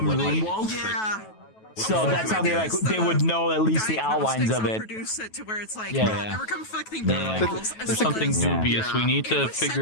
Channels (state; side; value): late; right; 9.2 ms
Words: Runewald. So that's how they would know at least the outlines of it. Yeah. There's something dubious. We need to